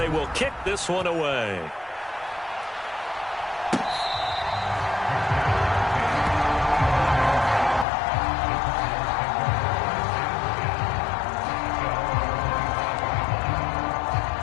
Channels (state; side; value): drops out; right; at 7.9 s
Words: will kick this one away.